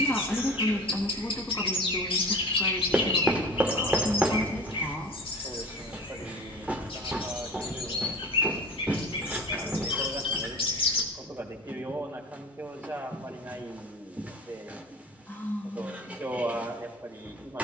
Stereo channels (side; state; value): both; normal; correlation 0.38